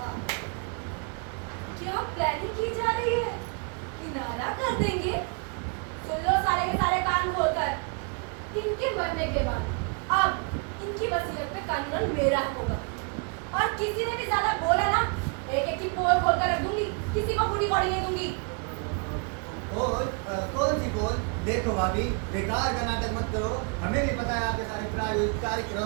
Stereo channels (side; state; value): left; quieter; 36.1 dB